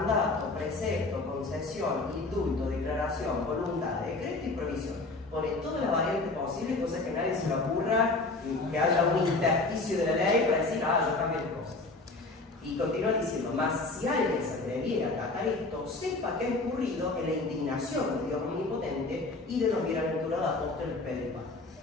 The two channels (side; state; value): right; quieter; 3.3 dB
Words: precepto, concesión, indulto, declaración, voluntad, decreto y provisión. Pone toda la variante posible, cosa que a nadie se le ocurra que haya un intersticio de la ley para decir: ah, yo cambio de cosas. Y continúa diciendo: mas si alguien se atreviera a acatar esto, sepa que ha incurrido en la indignación de Dios omnipotente y de los bienaventurados apóstoles Pedro y Pablo.